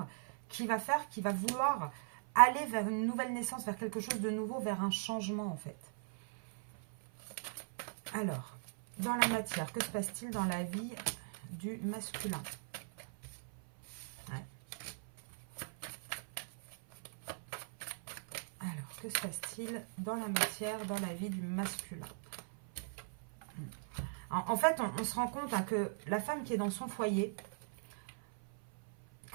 qui va faire, qui va vouloir aller vers une nouvelle naissance, vers quelque chose de nouveau, vers un changement en fait. Alors, dans la matière, que se passe-t-il dans la vie du masculin? Ouais. Alors, que se passe-t-il dans la matière, dans la vie du masculin? En fait, on se rend compte hein, que la femme qui est dans son foyer,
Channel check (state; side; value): silent; left; 52 dB below the other